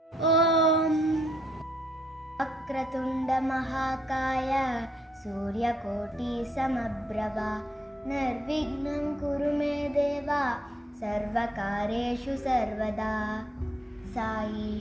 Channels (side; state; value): both; normal; correlation 0.72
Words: ஓம் வக்ரதுண்ட மகாகாய சூரியகோட்டி சமப்ரபா நிர்விக்னம் குரு மே தேவா சர்வகாரேஷு சர்வதா